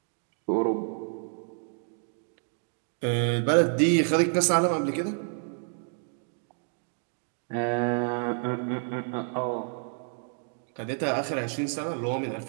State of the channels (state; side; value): silent; left; 58 dB below the other